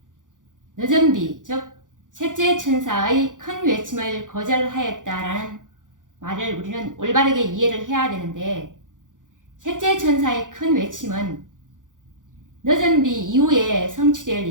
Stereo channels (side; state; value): left; late; 0.88 ms